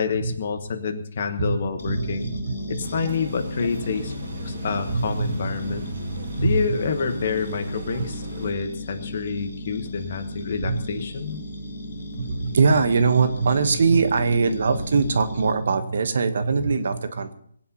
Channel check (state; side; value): inverted; both; correlation -0.77